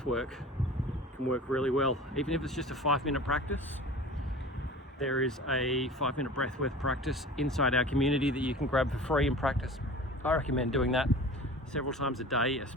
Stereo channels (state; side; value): normal; both; correlation 0.39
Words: work can work really well, even if it's just a 5-minute practice. There is a 5-minute breathwork practice inside our community that you can grab for free and practice. I recommend doing that several times a day,